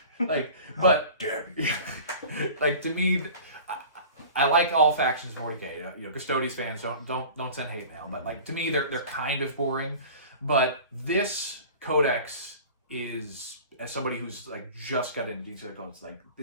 But like to me, I like all factions of 40K. Custodies fans don't send hate mail, but like to me they're kind of boring. But this codex is, as somebody who's like just got into Genestealer codes, like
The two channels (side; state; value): both; inverted; correlation -0.40